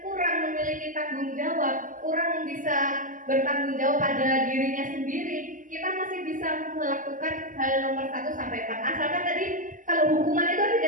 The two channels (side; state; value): left; late; 0.38 ms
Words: kurang memiliki tanggung jawab, kurang bisa bertanggung jawab pada dirinya sendiri, kita masih bisa melakukan hal nomor 1 sampai 4. Asalkan tadi kalau hukuman itu